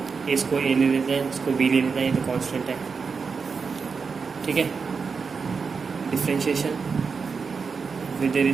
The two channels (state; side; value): quieter; left; 5.2 dB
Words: इसको ए ले लेते हैं, इसको बी ले लेते हैं, ये तो कॉन्स्टेंट है, ठीक है। Differentiation with